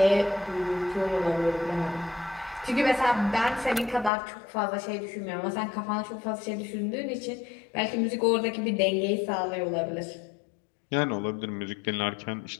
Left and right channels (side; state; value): right; drops out; at 4.1 s